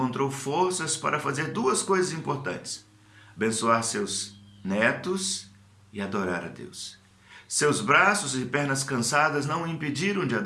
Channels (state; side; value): identical; both; correlation 1.00